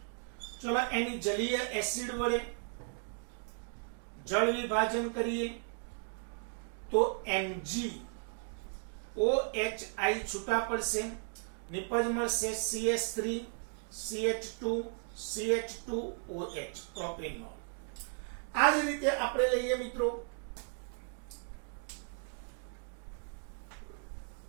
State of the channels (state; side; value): silent; left; 54 dB below the other